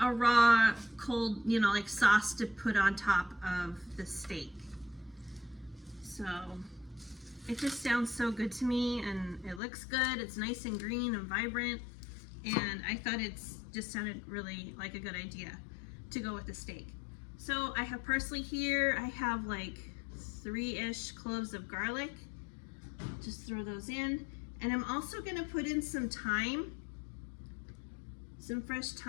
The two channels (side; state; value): right; drops out; at 9.6 s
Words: a raw, cold, you know, like sauce to put on top of the steak. So it just sounds so good to me, and it looks good. It's nice and green and vibrant, and I thought it just sounded really like a good idea to go with the steak. So I have parsley here. I have like 3-ish cloves of garlic. Just throw those in. And I'm also gonna put in some thyme, some fresh